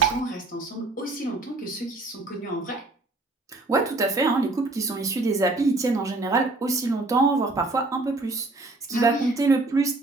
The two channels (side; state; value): left; quieter; 3.1 dB